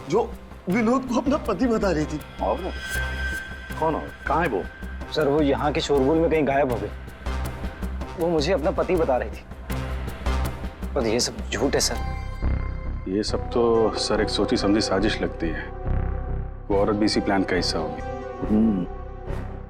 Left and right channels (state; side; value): identical; both; correlation 1.00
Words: जो विनोद को अपना पति बता रही थी। और कौन और कहाँ है वो? सर वो यहाँ के शोरगुल में कहीं गायब हो गई। वो मुझे अपना पति बता रही थी, पर ये सब झूठ है सर। ये सब तो सर एक सोची समझी साजिश लगती है। वो औरत भी इसी प्लान का हिस्सा होगी।